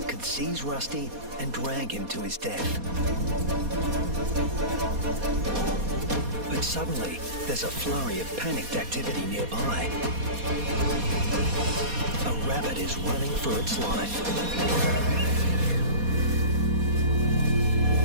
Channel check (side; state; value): left; late; 4.2 ms